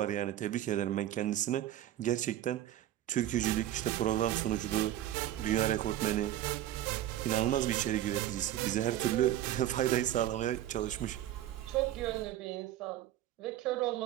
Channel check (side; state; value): left; quieter; 12.9 dB